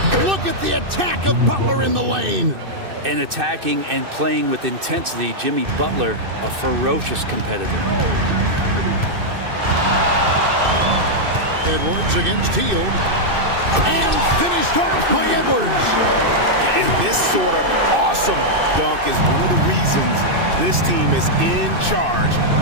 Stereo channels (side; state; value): left; late; 2.6 ms